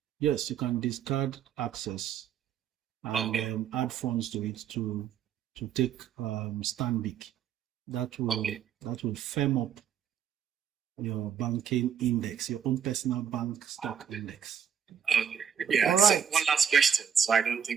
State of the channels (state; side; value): quieter; left; 8.1 dB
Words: Yes, you can discard access and add funds to it to take Stanbic. That will firm up your banking index, your own personal bank stock index. Okay. Yeah. All right. So one last question, so I don't